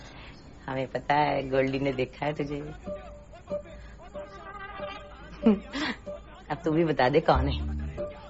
हमें पता है, गोल्डी ने देखा है तुझे। अब तू भी बता दे कौन है,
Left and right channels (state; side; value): identical; both; correlation 1.00